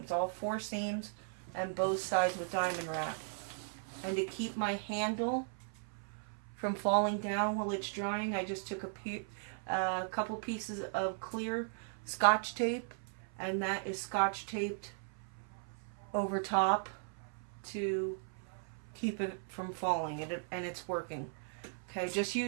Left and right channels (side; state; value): left; silent; 53 dB below the other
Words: all 4 seams and both sides with diamond wrap. And to keep my handle from falling down while it's drying, I just took a couple pieces of clear Scotch tape, and that is Scotch taped over top to keep it from falling, and it's working. Okay, just